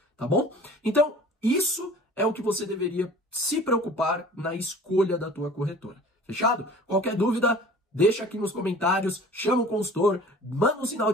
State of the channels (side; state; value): both; normal; correlation 0.45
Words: tá bom? Então, isso é o que você deveria se preocupar na escolha da tua corretora. Fechado? Qualquer dúvida, deixa aqui nos comentários, chama o consultor, manda um sinal